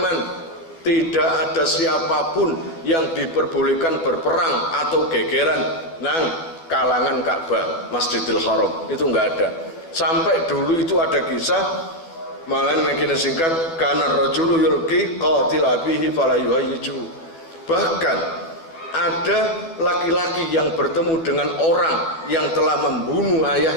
tidak ada siapapun yang diperbolehkan berperang atau gegeran nang kalangan Ka'bah, Masjidil Haram, itu enggak ada. Sampai dulu itu ada kisah, malah makin singkat, kana rajulu yulqi qatil abihi fala yuhayyiju. Bahkan ada laki-laki yang bertemu dengan orang yang telah membunuh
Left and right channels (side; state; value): right; late; 12 ms